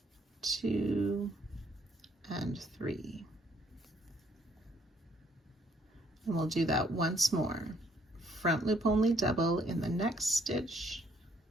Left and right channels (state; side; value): normal; both; correlation 0.66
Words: 2 and 3. And we'll do that once more. Front loop only double in the next stitch,